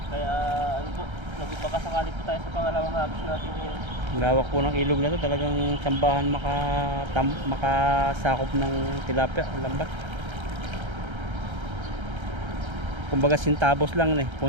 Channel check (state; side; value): late; left; 1.3 ms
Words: Kaya ano po, nagpapakasakali po tayo sa pangalawang hagis natin ngayon. Lawak po ng ilog na to. Talagang sambahan makasakop ng tilapia, lambat. Kumbaga sintabos lang eh.